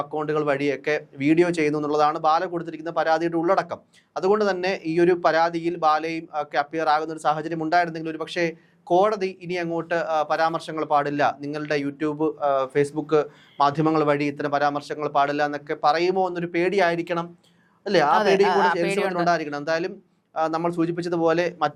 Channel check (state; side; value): identical; both; correlation 1.00